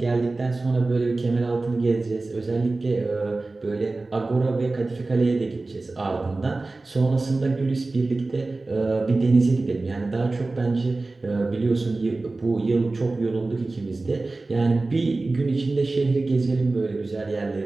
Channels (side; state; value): left; quieter; 3.3 dB